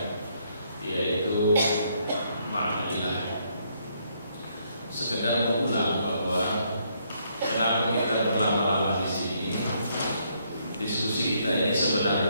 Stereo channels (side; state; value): both; inverted; correlation -0.72